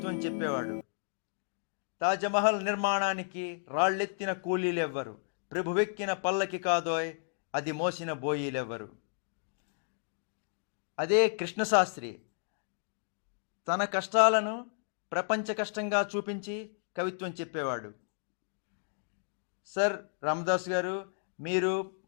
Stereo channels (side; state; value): right; silent; digital silence